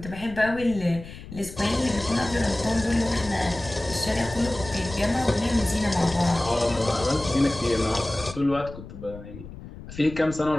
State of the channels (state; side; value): noise; left; rumble, 14 dB below the sound